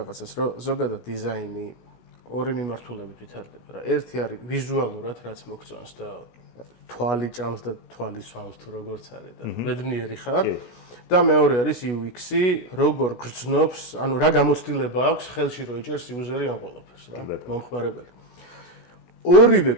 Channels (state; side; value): late; right; 16 ms